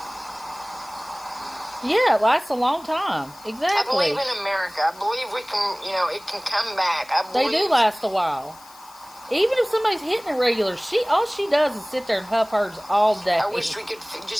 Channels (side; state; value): left; noise; hiss, 22 dB below the sound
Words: Yeah, it lasts a long time. Exactly. I believe in America. I believe we can, you know, it can come back. They do last a while. Even if somebody's hitting it regular, all she does is sit there and huff hers all day. I wish we could